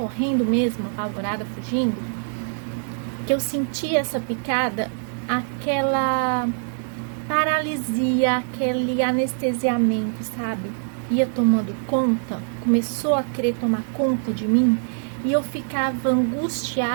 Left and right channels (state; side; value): silent; left; digital silence